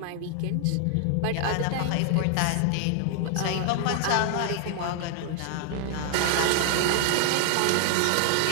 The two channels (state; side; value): different; both; correlation 0.00